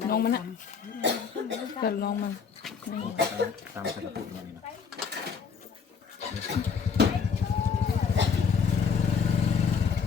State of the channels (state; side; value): quieter; right; 6.0 dB